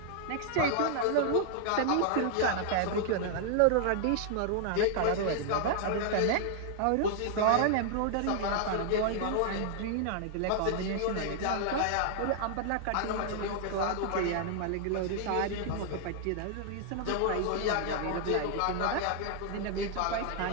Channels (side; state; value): both; different; correlation 0.00